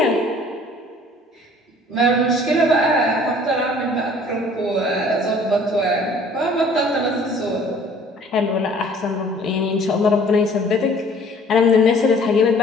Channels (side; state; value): both; normal; correlation 0.53